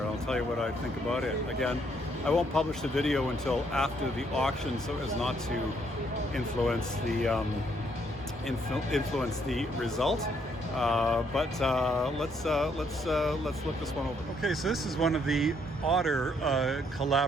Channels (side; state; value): both; normal; correlation 0.70